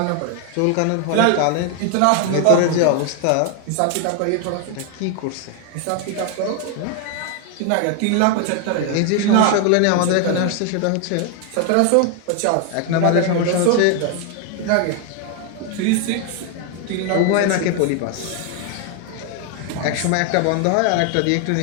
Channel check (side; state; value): both; different; correlation 0.01